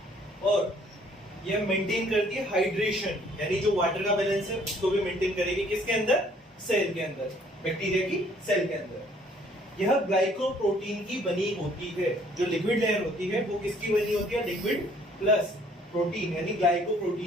और ये मेंटेन करती है हाइड्रेशन, यानी जो वाटर का बैलेंस है उसको भी मेंटेन करेगी। किसके अंदर? सेल के अंदर, बैक्टीरिया की सेल के अंदर। यह ग्लाइकोप्रोटीन की बनी होती है। जो लिक्विड लेयर होती है वो किसकी बनी होती है? लिक्विड प्लस प्रोटीन, यानी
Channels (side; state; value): both; normal; correlation 0.60